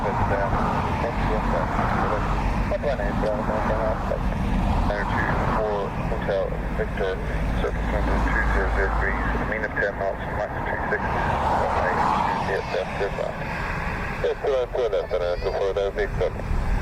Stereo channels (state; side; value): identical; both; correlation 1.00